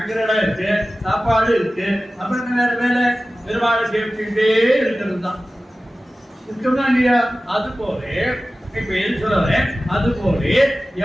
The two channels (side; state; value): both; normal; correlation 0.96